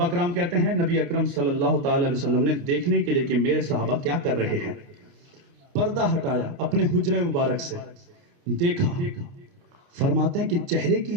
کرام کہتے ہیں نبی اکرم صلی اللہ تعالی علیہ وسلم نے دیکھنے کے لیے کہ میرے صحابہ کیا کر رہے ہیں، پردہ ہٹایا اپنے حجرے مبارک سے، دیکھا، فرماتے ہیں کہ چہرے کی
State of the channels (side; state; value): left; late; 29 ms